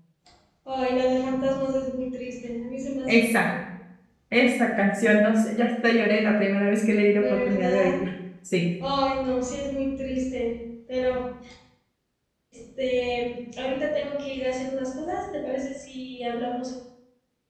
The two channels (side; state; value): both; identical; correlation 1.00